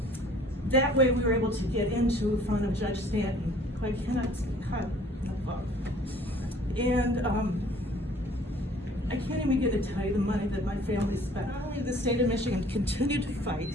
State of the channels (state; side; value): normal; both; correlation 0.54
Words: That way, we were able to get into front of Judge Stanton, who I cannot cut above. And I can't even begin to tell you the money that my family spent. Not only did the state of Michigan continue to fight,